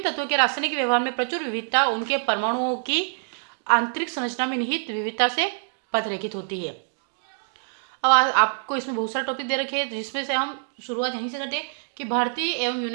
तत्वों के रासायनिक व्यवहार में प्रचुर विविधता उनके परमाणुओं की आंतरिक संरचना में निहित विविधता से पथरेखित होती है। अब आपको इसमें बहुत सारे टॉपिक दे रखे हैं, जिसमें से हम शुरुआत यहीं से करते हैं कि भारतीय एवं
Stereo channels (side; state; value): left; silent; digital silence